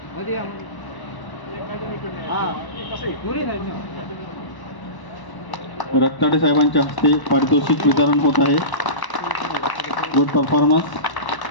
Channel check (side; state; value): right; late; 1.1 ms